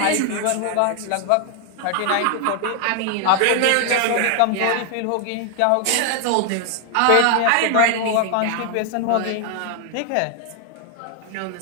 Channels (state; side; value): different; both; correlation 0.00